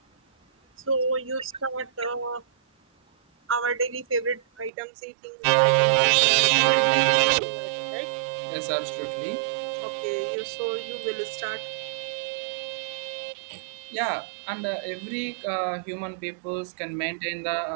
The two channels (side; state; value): left; drops out; at 4.7 s